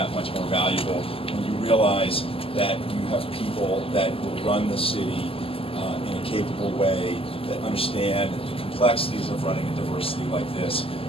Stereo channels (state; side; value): late; right; 0.27 ms